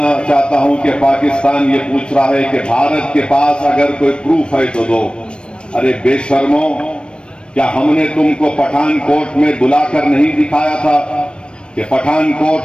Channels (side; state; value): right; late; 0.056 ms